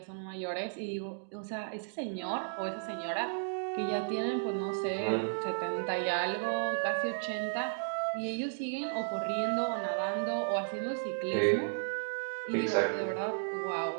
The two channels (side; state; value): left; silent; digital silence